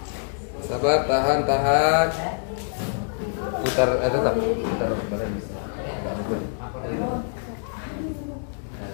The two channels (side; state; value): right; silent; digital silence